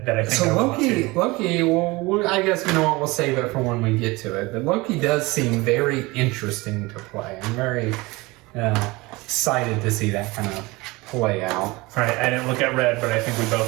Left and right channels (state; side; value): quieter; left; 22.8 dB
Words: So I want to. Loki. Well, I guess you know what. We'll save it for when we get to it. But Loki does seem very interesting to play. I'm very excited to see that kind of play out. All right, I didn't look at red, but I think we